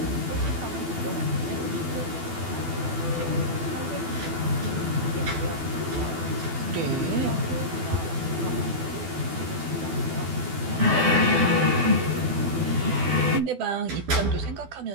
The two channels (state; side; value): late; left; 12 ms